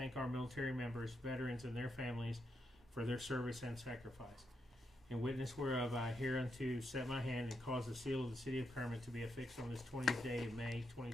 our military members, veterans, and their families for their service and sacrifice. In witness whereof, I hereunto set my hand and cause the seal of the City of Kermit to be affixed on this 20th day of May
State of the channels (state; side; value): normal; both; correlation 0.82